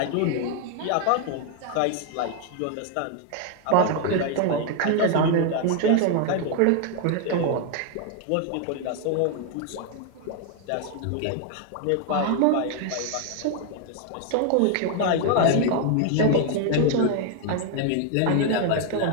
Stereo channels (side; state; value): both; different; correlation 0.00